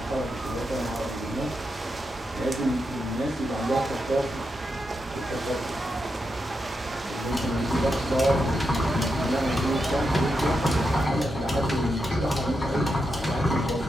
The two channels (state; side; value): normal; both; correlation 0.86